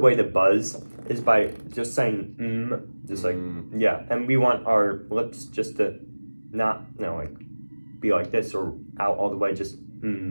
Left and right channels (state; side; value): inverted; both; correlation -1.00